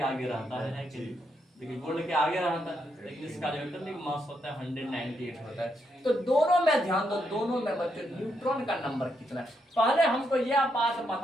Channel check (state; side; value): normal; both; correlation 0.79